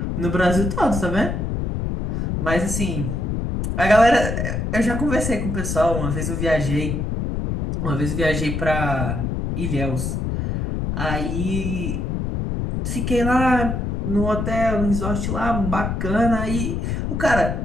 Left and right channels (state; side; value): noise; left; rumble, 2 dB below the sound